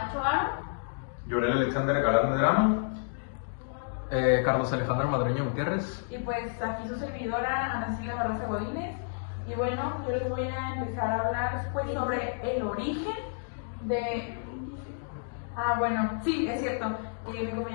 Aro, Llorel Alexander Galán Medrano, Carlos Alejandro Madreño Gutiérrez. y pues aquí su servidora Ana Silvia Barraza Godínez. Y bueno, yo les voy a empezar a hablar pues sobre el origen de... bueno, sí, es cierto. Mi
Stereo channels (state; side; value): silent; right; digital silence